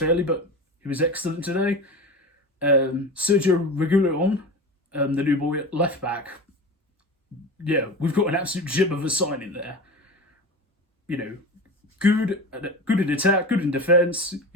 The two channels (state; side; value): normal; both; correlation 0.29